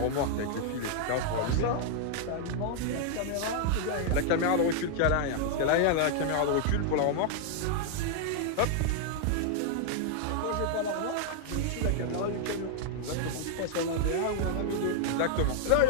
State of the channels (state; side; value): different; both; correlation 0.00